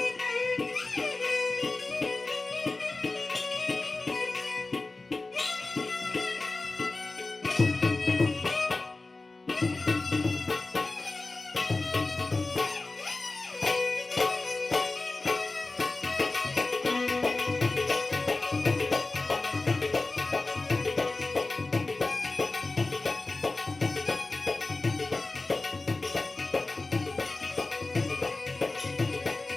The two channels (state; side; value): quieter; right; 3.4 dB